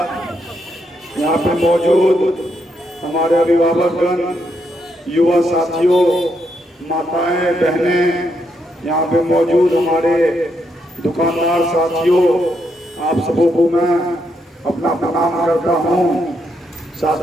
यहाँ पे मौजूद हमारे अभिभावकगण, युवा साथियों, माताएं, बहनें, यहाँ पे मौजूद हमारे दुकानदार साथियों, आप सबों को मैं अपना प्रणाम करता हूँ।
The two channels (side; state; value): both; normal; correlation 0.79